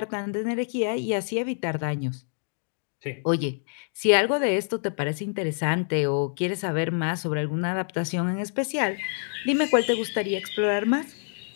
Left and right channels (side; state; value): right; silent; digital silence